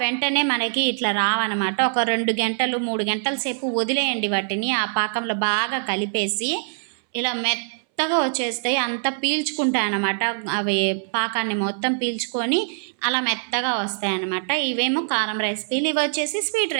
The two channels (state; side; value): silent; left; 63 dB below the other